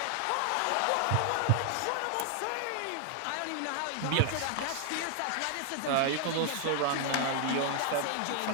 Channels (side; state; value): both; different; correlation 0.00